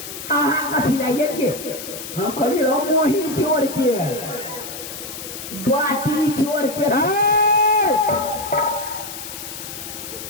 अहाँ कथी लाइए हम कहलिए रो मोही चोर के बाटी चोर के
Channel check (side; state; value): left; noise; hiss, 10 dB below the sound